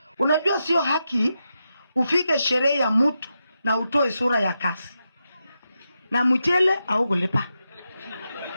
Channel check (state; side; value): inverted; both; correlation -0.87